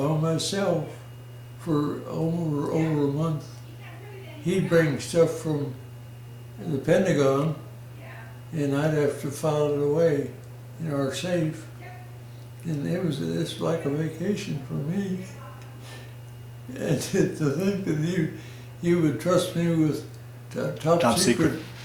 myself for over a month. He'd bring stuff from the Pentagon, and I'd have to file it away in our safe. And it's like a vacation for me. And to think that he would trust me with top secret,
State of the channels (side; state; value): both; identical; correlation 1.00